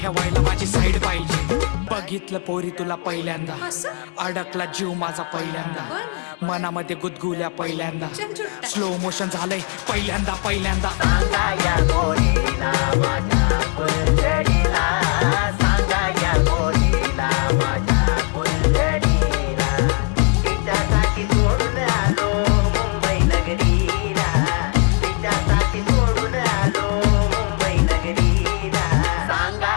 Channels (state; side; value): quieter; right; 32.4 dB